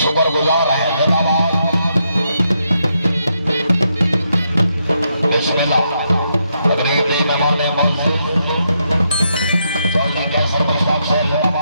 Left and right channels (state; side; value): inverted; both; correlation -0.80